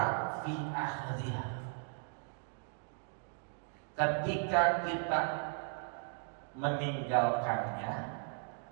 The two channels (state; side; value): silent; left; 53 dB below the other